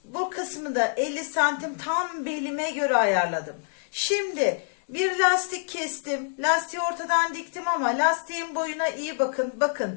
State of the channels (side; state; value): right; silent; digital silence